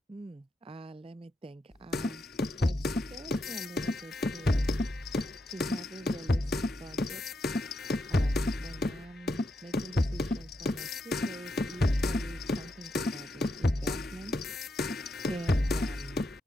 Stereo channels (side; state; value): both; normal; correlation 0.83